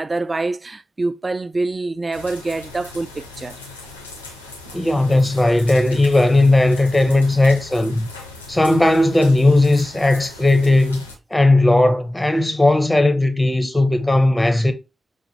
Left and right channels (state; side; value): normal; both; correlation 0.96